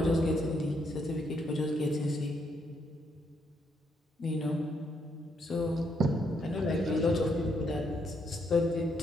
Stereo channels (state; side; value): normal; both; correlation 0.75